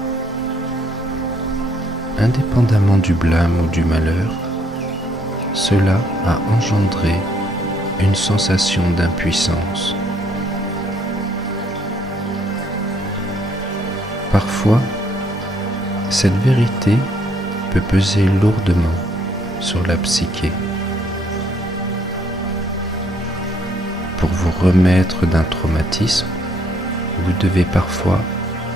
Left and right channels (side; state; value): both; normal; correlation 0.68